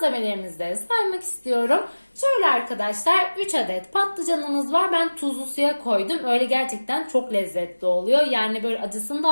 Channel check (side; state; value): both; inverted; correlation -1.00